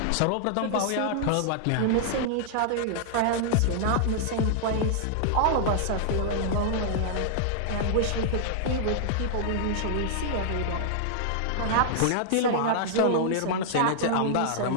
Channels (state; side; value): different; both; correlation -0.01